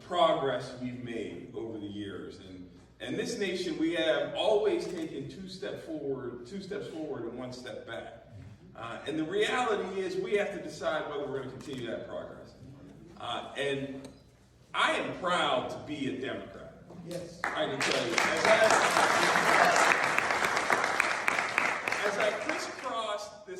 we've made over the years. And this nation, we have always taken two steps forward and one step back. And the reality is we have to decide whether we're going to continue that progress. And I am proud to be a Democrat. Yes. I can tell you. As I crisscrossed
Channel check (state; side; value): identical; both; correlation 1.00